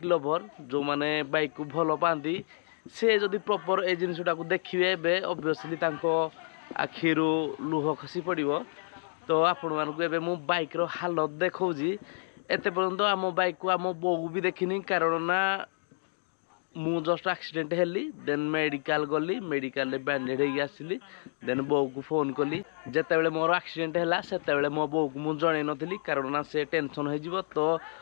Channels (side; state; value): right; silent; digital silence